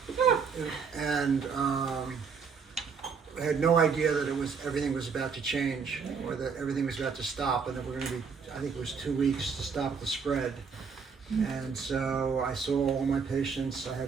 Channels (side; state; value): left; quieter; 5.8 dB